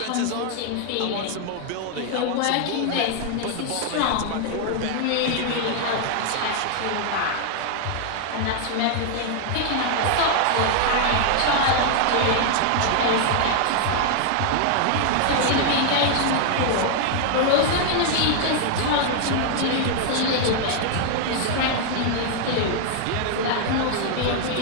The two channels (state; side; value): different; both; correlation 0.00